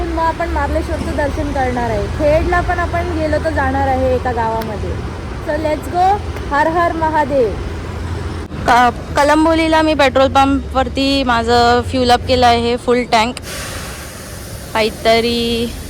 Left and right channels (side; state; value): both; identical; correlation 1.00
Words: मग आपण मार्लेश्वरचं दर्शन करणार आहे. खेडला पण आपण गेलो तर जाणार आहे एका गावामध्ये. So let's go. हर हर महादेव. कलंबोलीला मी पेट्रोल पंपवरती माझं फ्यूल अप केलं आहे फुल टँक. काहीतरी